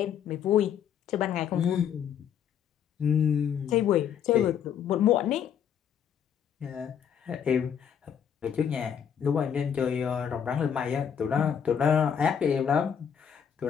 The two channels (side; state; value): right; quieter; 8.2 dB